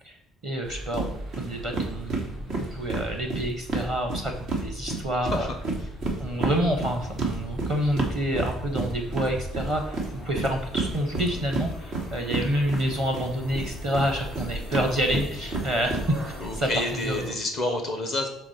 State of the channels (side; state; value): both; normal; correlation 0.64